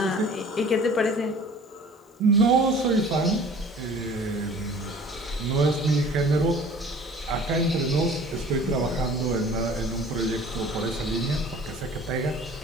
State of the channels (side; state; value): both; normal; correlation 0.47